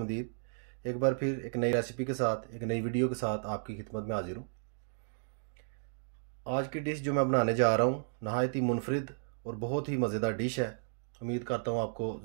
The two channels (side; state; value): left; silent; digital silence